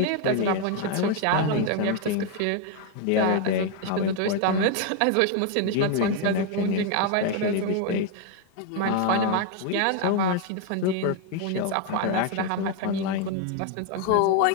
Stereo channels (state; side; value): different; both; correlation 0.01